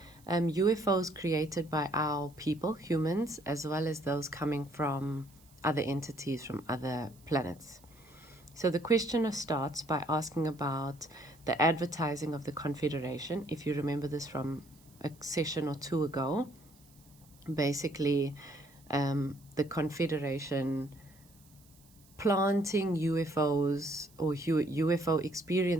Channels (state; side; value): noise; right; hiss, 28 dB below the sound